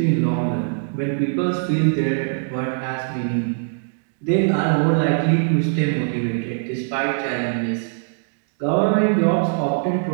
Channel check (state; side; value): silent; left; digital silence